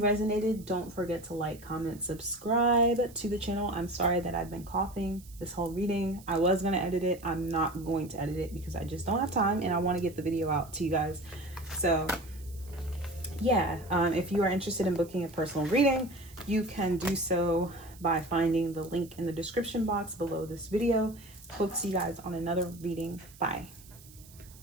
don't forget to like, comment, subscribe to the channel. I'm sorry that I've been coughing this whole reading. I was going to edit it. I'm not going to edit it because I just don't have time, and I want to get the video out to you guys. So yeah, if you are interested in booking a personal reading, you can do so by finding the link in the description box below this video. Hope to see you guys on another reading. Bye.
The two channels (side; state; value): right; noise; hiss, 22 dB below the sound